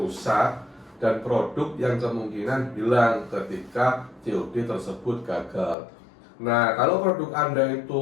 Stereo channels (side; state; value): right; drops out; at 5.8 s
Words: dan produk yang kemungkinan hilang ketika COD tersebut gagal. Nah, kalau produk Anda